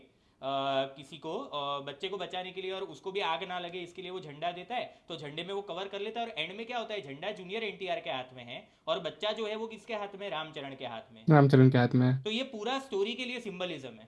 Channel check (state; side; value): identical; both; correlation 1.00